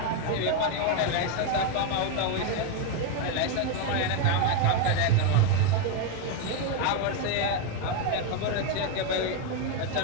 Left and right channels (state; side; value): different; both; correlation 0.02